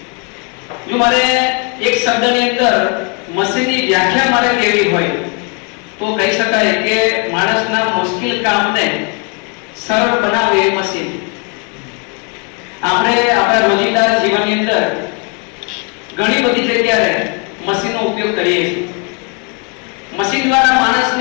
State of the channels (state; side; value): quieter; right; 35.9 dB